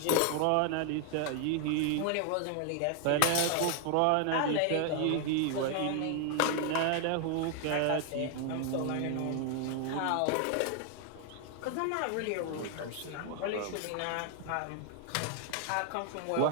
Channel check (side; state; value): both; different; correlation 0.00